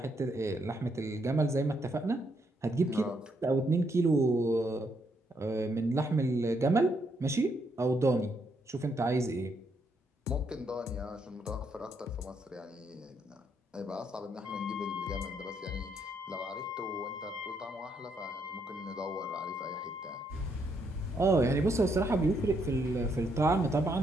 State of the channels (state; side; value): normal; both; correlation 0.75